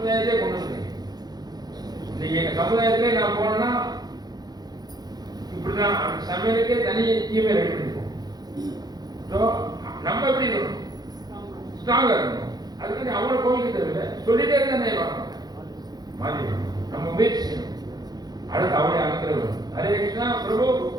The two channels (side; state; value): left; late; 0.19 ms